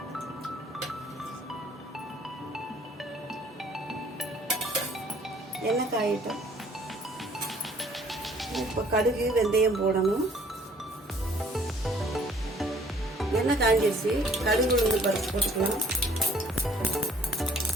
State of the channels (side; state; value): both; normal; correlation 0.58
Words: எண்ணெய் காயிட்டோம். இப்போ கடுகு, வெந்தயம் போடணும். எண்ணெய் காஞ்சிருச்சு. கடுகு, உளுந்து பருப்பு போட்டுக்கலாம்.